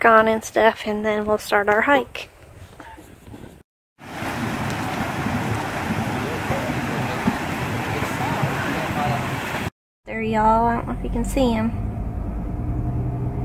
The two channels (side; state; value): both; identical; correlation 1.00